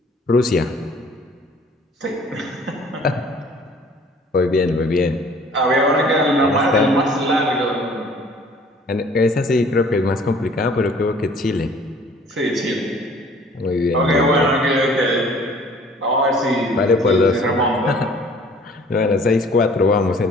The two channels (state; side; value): normal; both; correlation 0.53